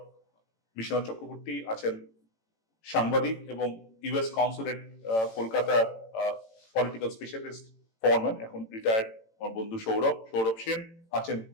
বিশ্বনাথ চক্রবর্তী, আছেন সাংবাদিক এবং ইউএস কনসুলেট কলকাতার পলিটিক্যাল স্পেশালিস্ট ফরম্যান, এখন রিটায়ার্ড আমার বন্ধু সৌরভ সেন, আছেন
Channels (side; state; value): right; late; 18 ms